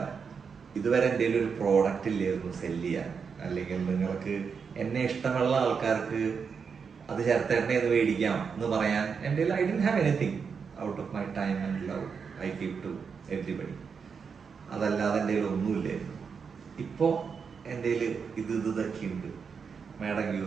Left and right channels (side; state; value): left; quieter; 6.0 dB